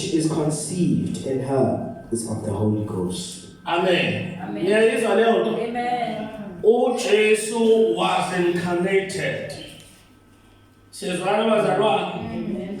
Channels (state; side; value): identical; both; correlation 1.00